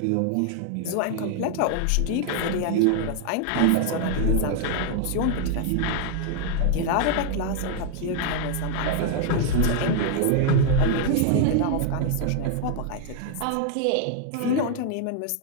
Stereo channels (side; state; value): both; different; correlation 0.00